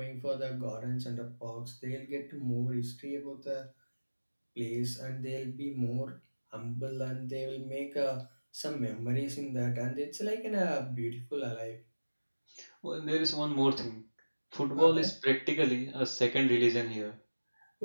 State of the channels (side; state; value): both; inverted; correlation -1.00